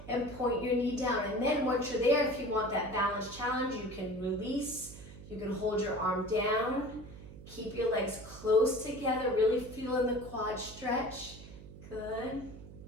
and point your knee down. And then once you're there, if you want that balance challenge, you can release. You can hold your arm down. Keep your legs close together, really feeling the quad stretch. Good.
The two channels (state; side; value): noise; right; hum, 16 dB below the sound